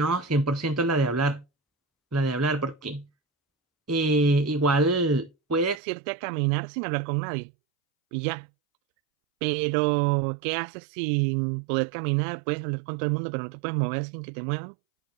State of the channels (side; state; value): left; drops out; at 5.8 s